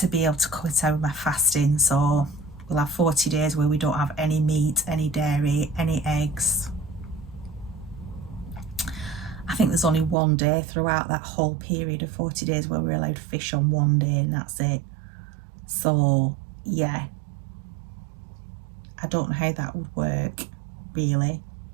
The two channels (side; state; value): left; drops out; at 10.2 s